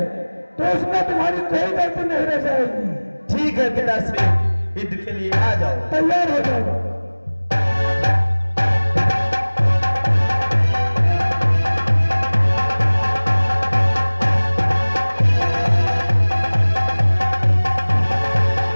तो उसमें तुम्हारी कोई गलती नहीं रह जाएगी। ठीक है पिताश्री, युद्ध के लिए आ जाओ। तैयार हो जाओ।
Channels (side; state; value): both; inverted; correlation -1.00